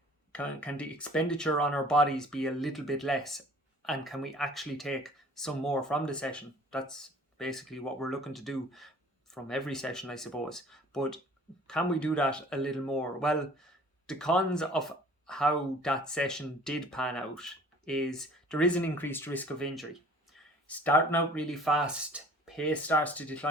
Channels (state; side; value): normal; both; correlation 0.50